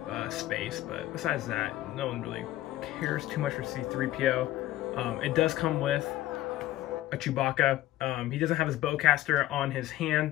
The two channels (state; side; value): quieter; right; 15.2 dB